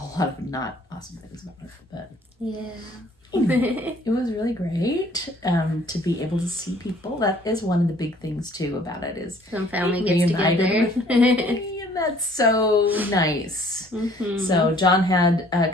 lot of not awesome things about it. But yeah. It was really great to be able to see people. That is one of the big things too about it is some family gets together. And that's so nice. So John had a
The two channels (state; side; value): normal; both; correlation 0.57